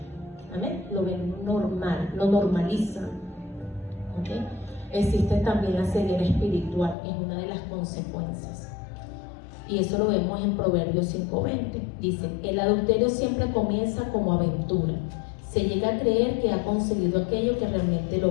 Amén. Lo ven normal, lo normalizan. ¿Okay? Existe también la ceguera espiritual, que es una de las consecuencias. Y eso lo vemos en Proverbios 5:20. Dice: el adulterio siempre comienza como aventura. Se llega a creer que ha conseguido aquello que realmente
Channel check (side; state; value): right; drops out; at 7.0 s